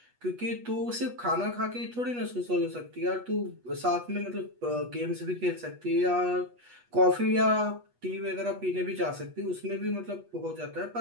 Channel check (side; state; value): left; late; 8.2 ms